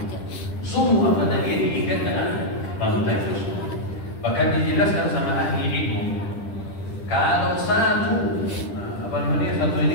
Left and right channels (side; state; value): right; late; 10 ms